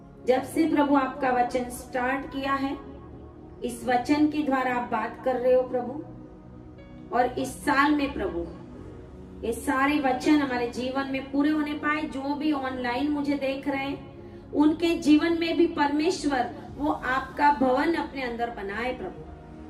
जब से प्रभु आपका वचन स्टार्ट किया है, इस वचन के द्वारा आप बात कर रहे हो प्रभु। और इस साल में प्रभु ये सारे वचन हमारे जीवन में पूरे होने पाए। जो भी ऑनलाइन मुझे देख रहे हैं उनके जीवन में भी परमेश्वर वो आपका भवन अपने अंदर बनाए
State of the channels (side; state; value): both; identical; correlation 1.00